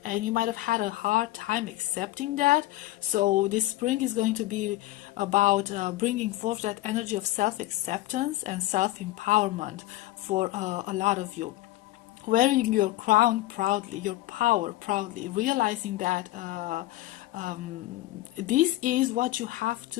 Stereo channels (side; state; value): right; quieter; 17.0 dB